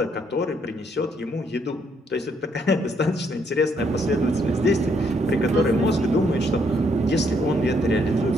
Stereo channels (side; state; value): both; normal; correlation 0.72